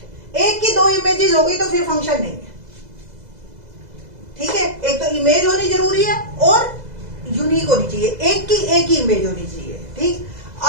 एक की 2 इमेजेस हो गई तो फिर फंक्शन नहीं है, ठीक है। एक तो इमेज होनी जरूरी है और यूनिक होनी चाहिए, एक की एक ही इमेज होनी चाहिए, ठीक।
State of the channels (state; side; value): late; left; 2.0 ms